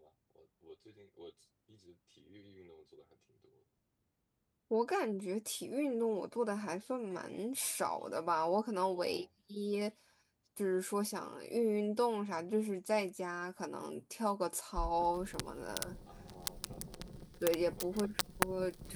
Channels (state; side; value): identical; both; correlation 1.00